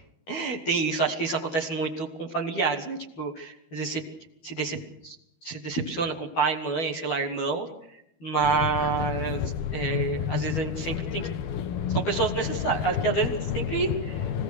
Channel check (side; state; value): right; late; 12 ms